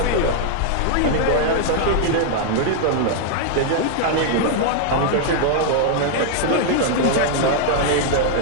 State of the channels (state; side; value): different; both; correlation 0.00